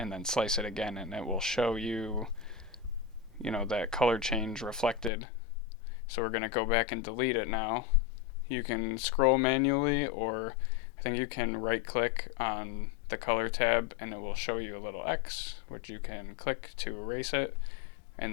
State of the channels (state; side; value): drops out; right; at 5.1 s